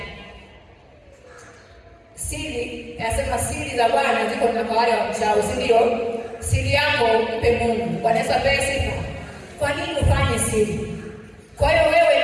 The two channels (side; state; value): both; identical; correlation 1.00